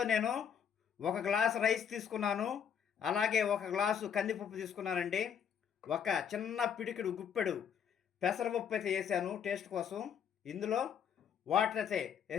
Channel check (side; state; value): right; quieter; 8.0 dB